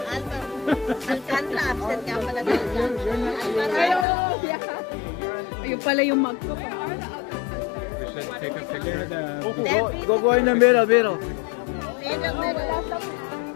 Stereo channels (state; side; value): drops out; right; at 4.0 s